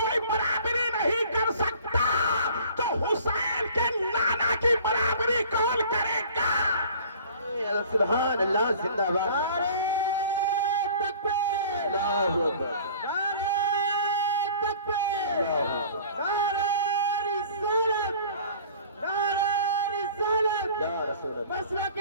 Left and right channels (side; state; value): both; inverted; correlation -0.48